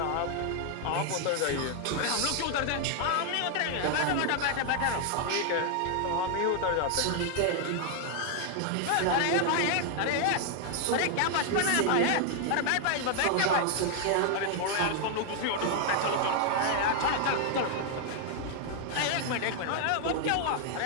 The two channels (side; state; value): both; different; correlation 0.00